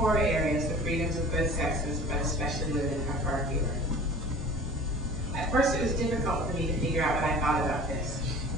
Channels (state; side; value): normal; both; correlation 0.43